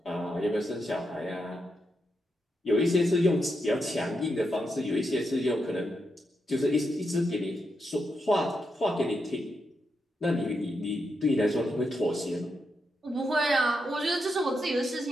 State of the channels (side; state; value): both; normal; correlation 0.84